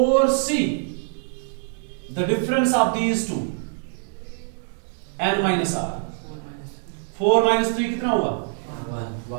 the difference of these two n minus r. 4 minus 3 कितना हुआ,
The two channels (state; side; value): silent; left; digital silence